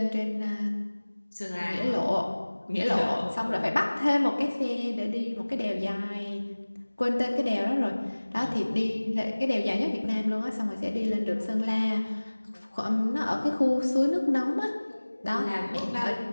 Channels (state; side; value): inverted; both; correlation -1.00